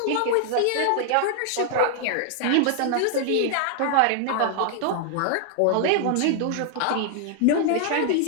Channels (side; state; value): both; different; correlation 0.00